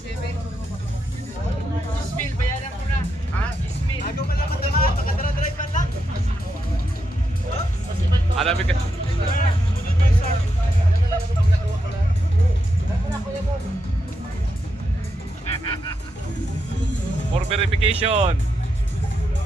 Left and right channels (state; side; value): normal; both; correlation 0.83